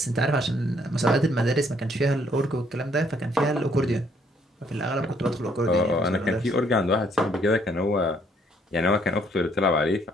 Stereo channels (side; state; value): both; normal; correlation 0.66